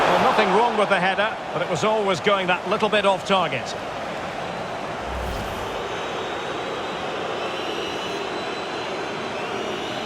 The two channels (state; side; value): identical; both; correlation 1.00